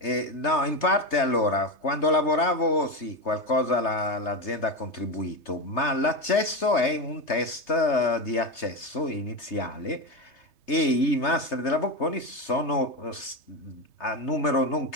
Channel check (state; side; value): late; right; 3.3 ms